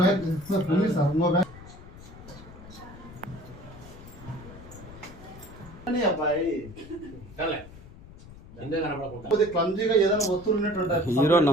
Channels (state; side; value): noise; left; rumble, 17 dB below the sound